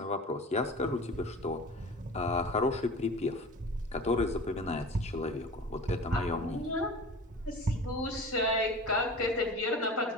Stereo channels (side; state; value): both; normal; correlation 0.38